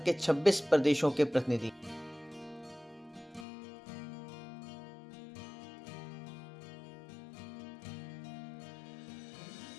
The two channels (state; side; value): drops out; right; at 3.5 s